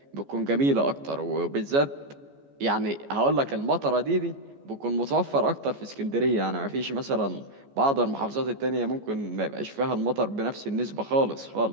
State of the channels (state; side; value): late; left; 14 ms